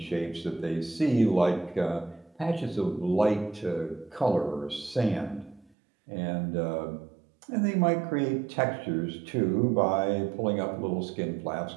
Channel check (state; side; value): drops out; left; at 5.7 s